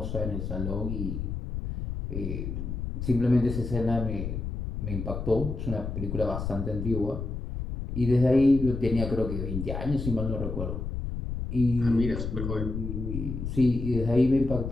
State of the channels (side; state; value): left; noise; rumble, 5 dB below the sound